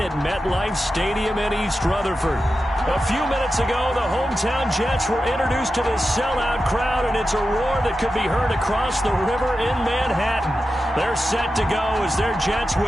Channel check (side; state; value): both; normal; correlation 0.91